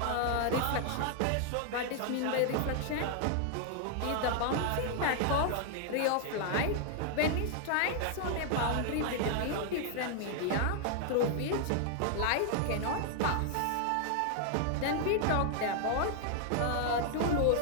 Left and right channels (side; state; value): both; different; correlation 0.00